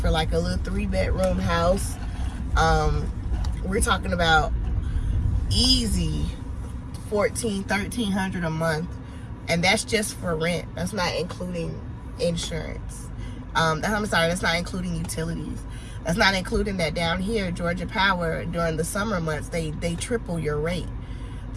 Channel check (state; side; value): identical; both; correlation 1.00